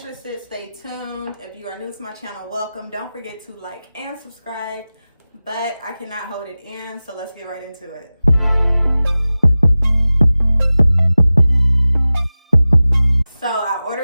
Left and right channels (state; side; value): inverted; both; correlation -0.96